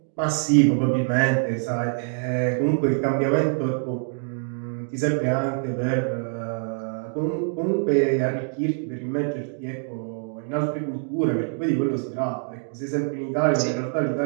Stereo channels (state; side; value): silent; left; 59 dB below the other